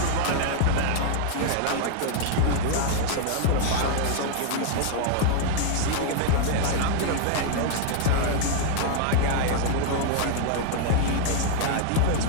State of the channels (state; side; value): different; both; correlation -0.01